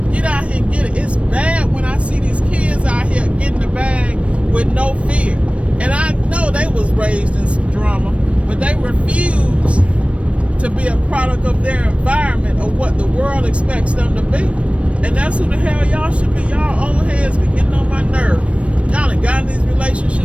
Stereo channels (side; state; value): left; late; 0.062 ms